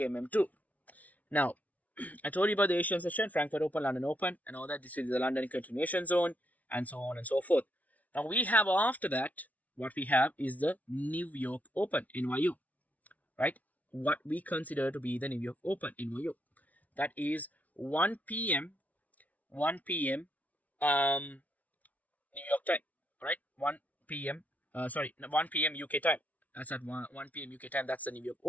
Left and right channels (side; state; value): right; late; 0.072 ms